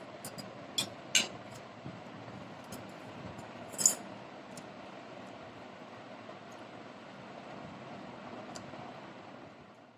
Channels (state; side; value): identical; both; correlation 1.00